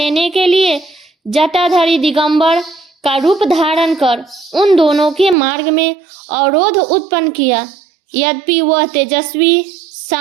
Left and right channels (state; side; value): drops out; left; at 5.4 s